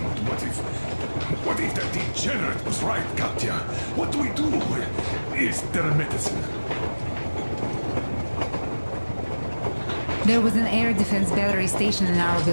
What if that degenerate was right, Katya? What do we do? Is there a medicine? There was an air defense battery station in our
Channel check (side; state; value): both; inverted; correlation -1.00